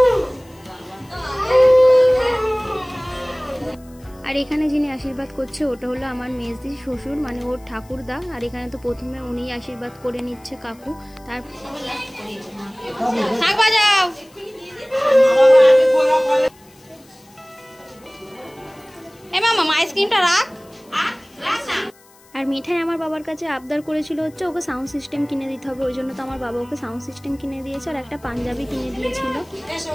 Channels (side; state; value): left; noise; hiss, 28 dB below the sound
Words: আর এখানে যিনি আশীর্বাদ করছে ওটা হলো আমার মেজদি শ্বশুর, মানে ওর ঠাকুরদা। আর এখানে তো প্রথমে উনি আশীর্বাদ করে নিচ্ছে কাকু। তার শাক বাজাও, এ মামা আইসক্রিমটা রাখ। আর মিঠাই আমার বাবার কাছে আবদার করেছিল হচ্ছে ওকে সাউন্ড সিস্টেম কিনে দিতে হবে, ওই জন্য তো আমার বাবা ওকে সাউন্ড সিস্টেম কিনে দিয়েছে, আর একটা পাঞ্জাবি কিনে দিয়েছিল।